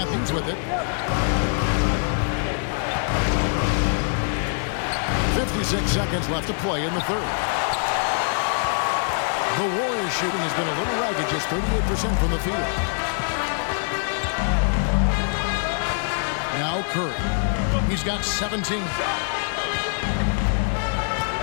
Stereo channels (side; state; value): right; silent; digital silence